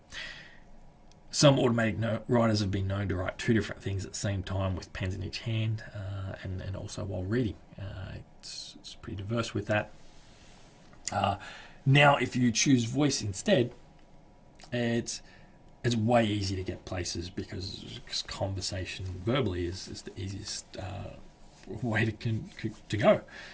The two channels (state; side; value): identical; both; correlation 1.00